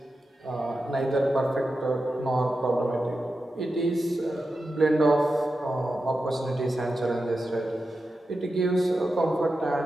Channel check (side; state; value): both; normal; correlation 0.90